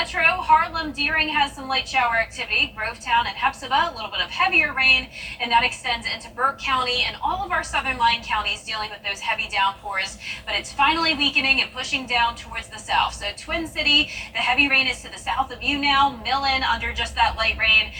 Harlem, Deering has some light shower activity. Grovetown and Hepzibah, a little bit of heavier rain, and that extends into Burke County and all of our southern line counties dealing with those heavy downpours. But it's finally weakening and pushing down towards the south. So Twin City, the heavy rain is to the south of you now. Millen under just that light rain,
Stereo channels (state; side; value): identical; both; correlation 1.00